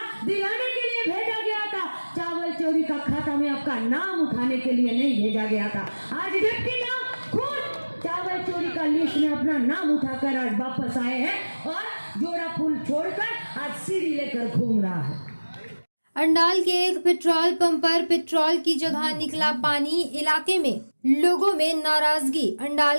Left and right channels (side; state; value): both; inverted; correlation -1.00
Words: दिलाने के लिए भेजा गया था। चावल चोरी का खाता में आपका नाम उठाने के लिए नहीं भेजा गया था। आज डिप्टी मेयर खुद चावल चोरी का लिस्ट में अपना नाम उठाकर आज वापस आए हैं, और जोड़ा फूल छोड़कर आज सीढ़ी लेकर घूम रहा है। अंडाल के एक पेट्रोल पंप पर पेट्रोल की जगह निकला पानी, इलाके में लोगों में नाराजगी।